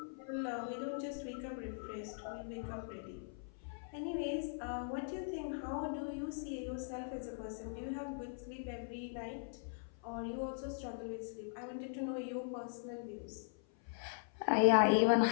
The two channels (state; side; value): silent; right; 51 dB below the other